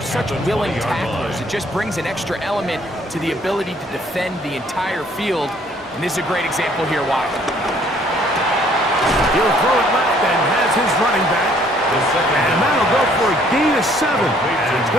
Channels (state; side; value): normal; both; correlation 0.61